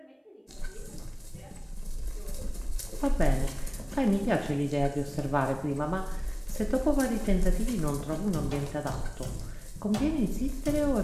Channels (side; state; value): both; identical; correlation 1.00